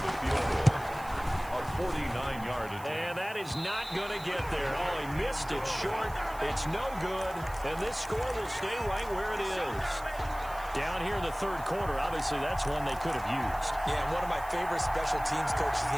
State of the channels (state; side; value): noise; right; hiss, 19 dB below the sound